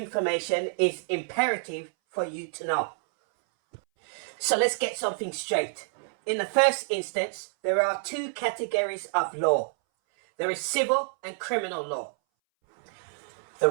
is imperative for you to know. So let's get something straight. In the first instance, there are two categories of law. There is civil and criminal law. The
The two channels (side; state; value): left; silent; 59 dB below the other